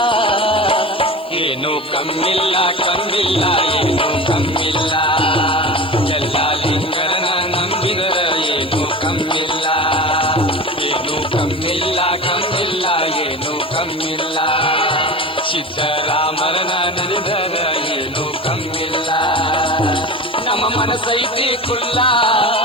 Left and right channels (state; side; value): noise; left; hiss, 28 dB below the sound